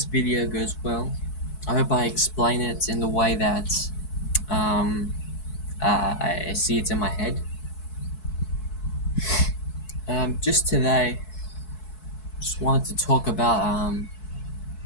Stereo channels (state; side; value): late; right; 4.6 ms